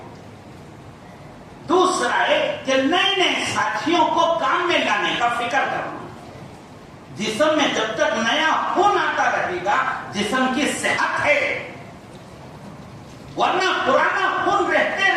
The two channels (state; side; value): identical; both; correlation 1.00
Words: دوسرا ہے کہ نئے نئے ساتھیوں کو کام میں لانے کا فکر کرنا. جسم میں جب تک نیا خون آتا رہے گا جسم کی صحت ہے، ورنہ پرانا خون رہتے